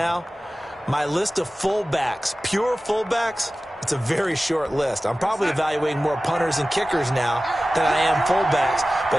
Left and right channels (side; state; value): both; normal; correlation 0.96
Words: my list of fullbacks, pure fullbacks, it's a very short list. I'm probably evaluating more punters and kickers now than I am fullbacks.